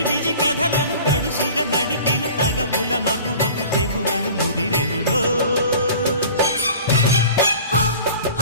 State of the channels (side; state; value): both; inverted; correlation -0.43